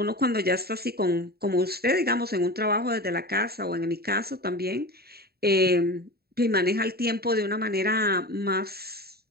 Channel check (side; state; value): left; late; 0.45 ms